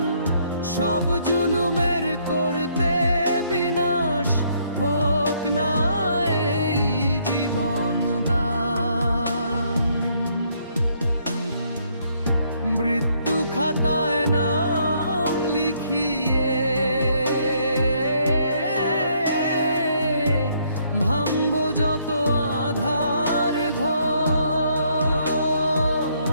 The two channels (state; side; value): inverted; both; correlation -0.69